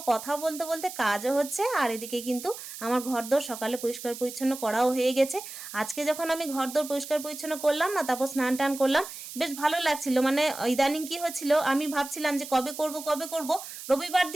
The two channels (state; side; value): noise; right; hiss, 11 dB below the sound